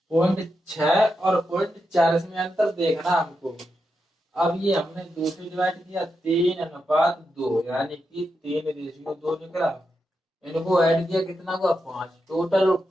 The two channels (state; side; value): normal; both; correlation 0.86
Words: और 0.4, इसमें अंतर देखना हमको। अब ये हमने 2 से डिवाइड किया, 3:2, यानी कि 3:2 निकला। इनको ऐड किया, कितना हुआ, 5। टोटल